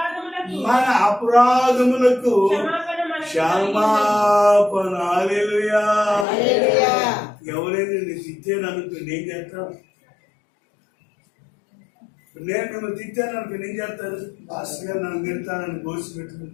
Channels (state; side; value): drops out; right; at 6.2 s